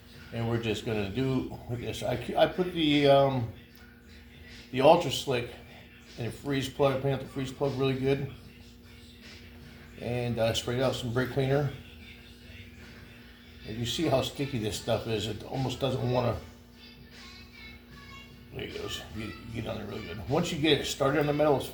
And we're just gonna do with this. I put the Ultra Slick in a freeze plug. I cleaned out the freeze plug really good, and sprayed out some brake cleaner. And you see how sticky this stuff is. It almost doesn't want to. There it goes. You get on there really good. Once you get it started in the metal, it's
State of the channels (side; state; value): both; identical; correlation 1.00